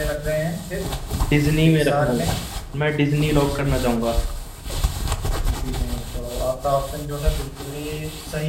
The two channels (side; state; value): both; identical; correlation 1.00